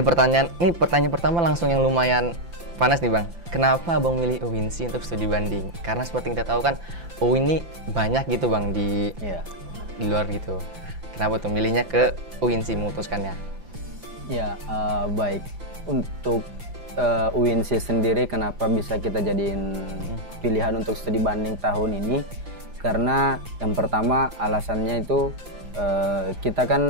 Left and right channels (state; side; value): late; left; 5.9 ms